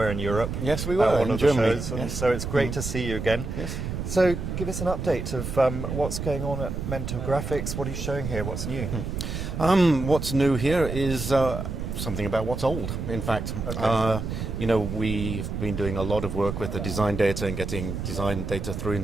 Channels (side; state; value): right; noise; rumble, 5 dB below the sound